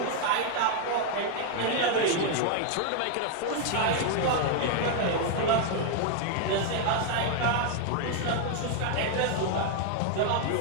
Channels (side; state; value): both; different; correlation 0.00